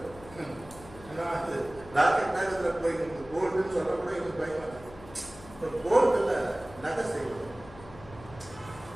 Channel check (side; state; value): left; noise; hum, 19 dB below the sound